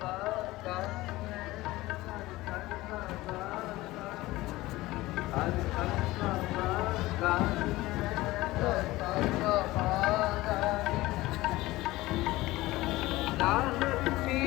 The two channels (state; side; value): quieter; right; 18.5 dB